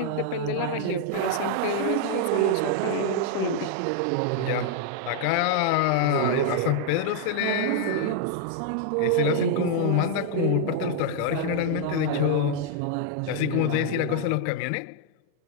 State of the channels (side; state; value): both; different; correlation -0.01